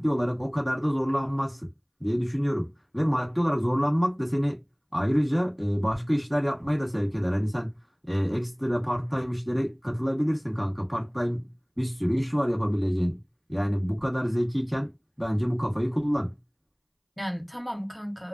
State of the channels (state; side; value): identical; both; correlation 1.00